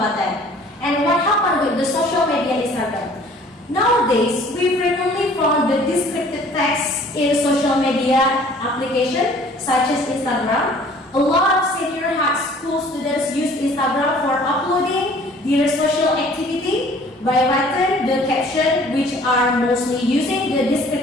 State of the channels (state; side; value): normal; both; correlation 0.53